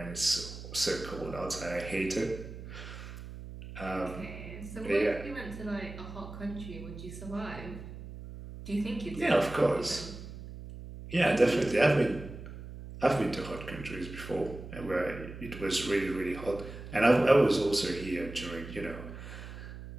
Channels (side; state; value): right; noise; hum, 12 dB below the sound